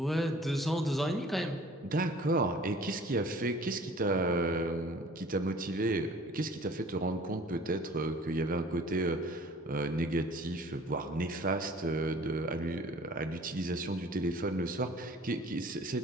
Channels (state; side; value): normal; both; correlation 0.49